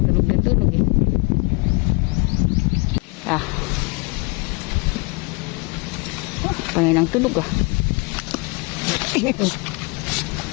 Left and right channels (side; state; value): right; quieter; 30.1 dB